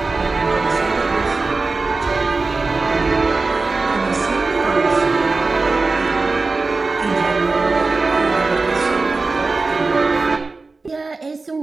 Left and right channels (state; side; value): quieter; left; 3.8 dB